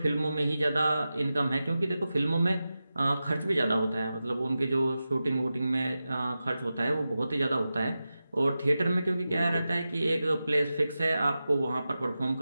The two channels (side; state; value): both; inverted; correlation -0.93